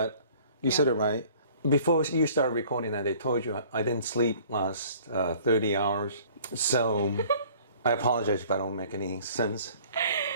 you said it right. Before you started recording that, they told you I didn't sleep last 30 hours. So I apologize if I don't make any sense.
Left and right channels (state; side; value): inverted; both; correlation -0.52